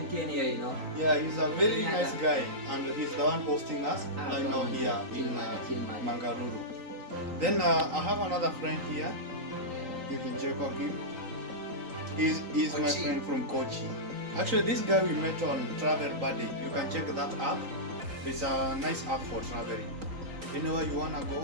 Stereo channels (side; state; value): left; late; 3.9 ms